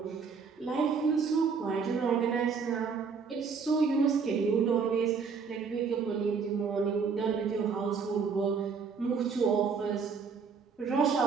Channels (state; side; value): quieter; left; 5.6 dB